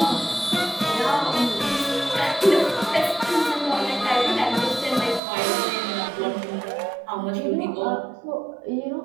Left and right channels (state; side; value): drops out; left; at 5.2 s